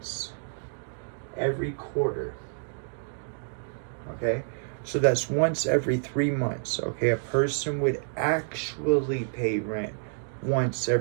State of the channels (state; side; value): silent; left; digital silence